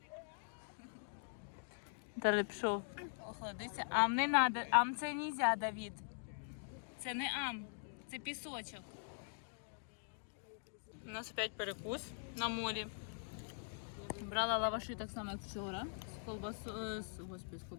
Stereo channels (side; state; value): right; silent; digital silence